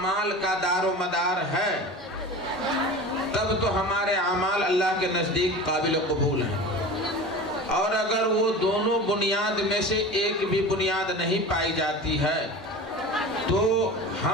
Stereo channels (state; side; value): normal; both; correlation 0.33